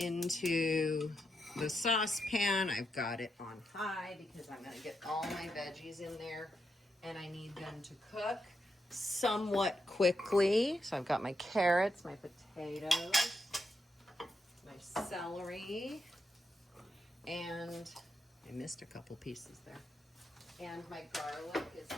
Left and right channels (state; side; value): normal; both; correlation 0.83